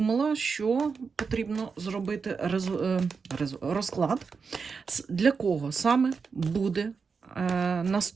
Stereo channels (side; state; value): left; quieter; 5.3 dB